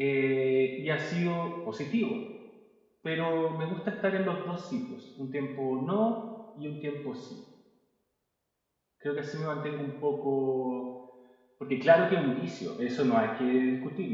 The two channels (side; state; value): both; identical; correlation 1.00